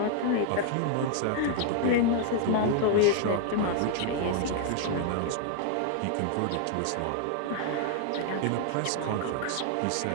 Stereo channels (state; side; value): different; both; correlation 0.00